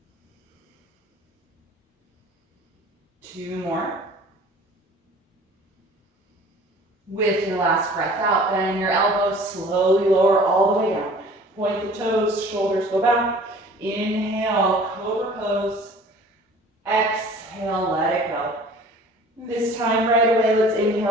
Two more. With your last breath out, bend your elbows, slowly lower all the way down. Point the toes, shoulders go back. Inhale, cobra pose. Exhale, let it go. This time right away, let's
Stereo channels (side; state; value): both; normal; correlation 0.48